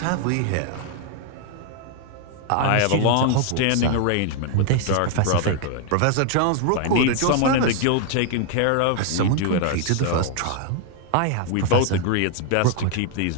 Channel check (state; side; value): different; both; correlation 0.00